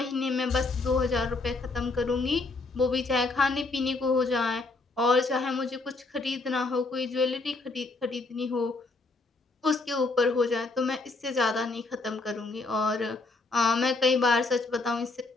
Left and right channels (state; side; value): quieter; right; 3.5 dB